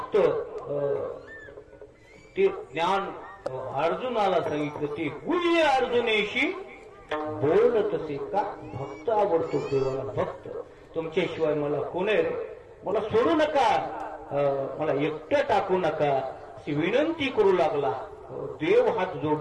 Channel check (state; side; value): identical; both; correlation 1.00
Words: ते ज्ञान अर्जुनाला सांगितलं. ते गुह्य अर्जुनेशी बोलत असे का. भक्त आवडतो देवाला, भक्त. तुमच्याशिवाय मला कोण आहे रे, मला सोडू नका, मला एकटं टाकू नका अशी विनंती करू लागला. देव हात जोड